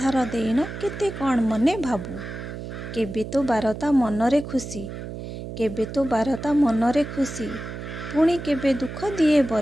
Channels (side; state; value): right; noise; hum, 9 dB below the sound